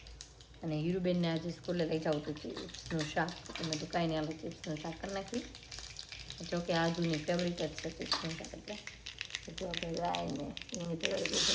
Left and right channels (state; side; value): identical; both; correlation 1.00